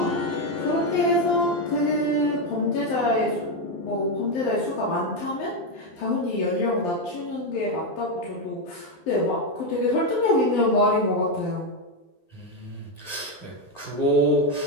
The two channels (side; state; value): right; late; 12 ms